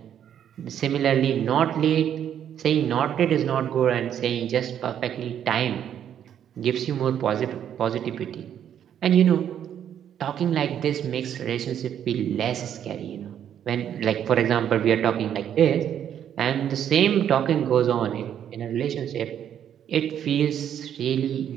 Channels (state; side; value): quieter; left; 9.6 dB